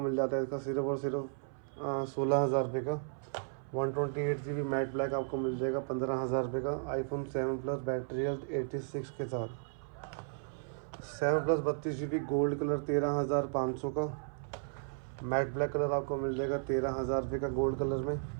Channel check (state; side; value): silent; left; 55 dB below the other